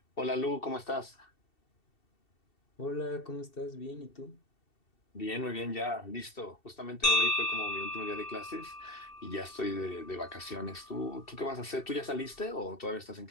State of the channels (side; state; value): right; late; 2.7 ms